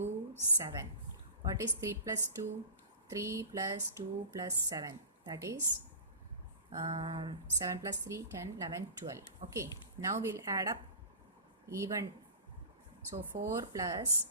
7. What is 3 plus 2? 3 plus 2 plus 7, that is 7 plus 3 10 11 12. Okay, now we'll add up even. So 4 plus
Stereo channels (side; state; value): both; inverted; correlation -0.35